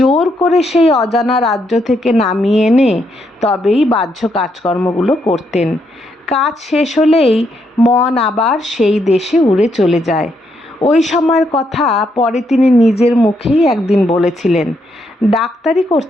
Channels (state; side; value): normal; both; correlation 0.77